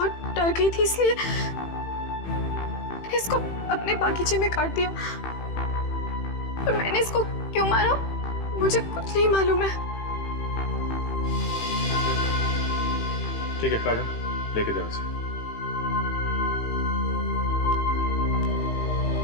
डर गई थी, इसलिए मैंने इसको अपने बागीचे में काट दिया। और मैंने इसको क्यों मारा मुझे कुछ नहीं मालूम है। ठीक है काजल, लेके जाओ इसे।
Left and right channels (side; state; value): right; late; 18 ms